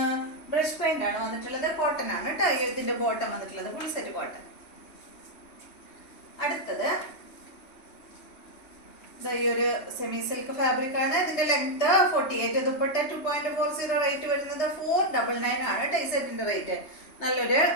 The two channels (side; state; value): right; late; 3.2 ms